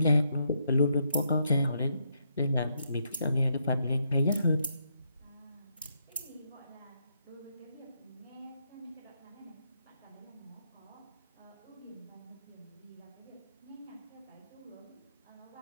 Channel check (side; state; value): both; inverted; correlation -0.77